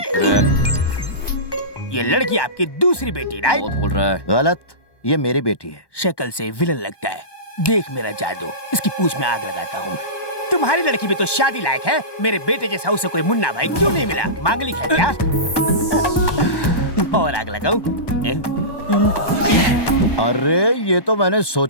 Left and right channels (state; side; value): late; right; 1.2 ms